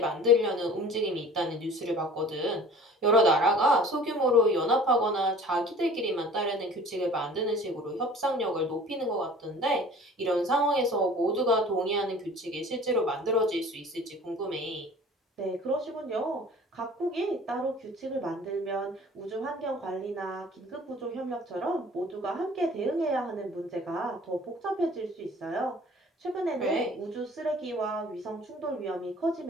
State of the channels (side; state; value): both; normal; correlation 0.46